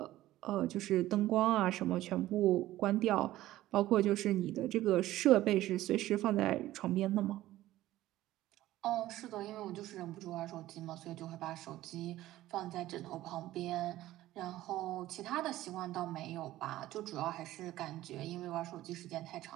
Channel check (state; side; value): quieter; left; 15.3 dB